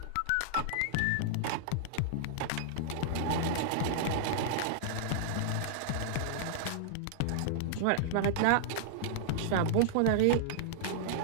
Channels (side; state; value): both; different; correlation -0.02